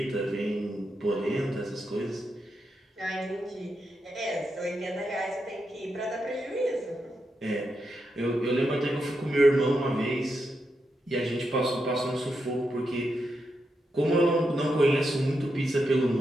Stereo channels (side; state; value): both; normal; correlation 0.85